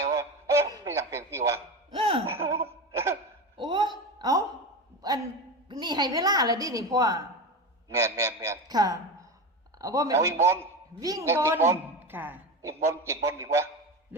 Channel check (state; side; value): normal; both; correlation 0.22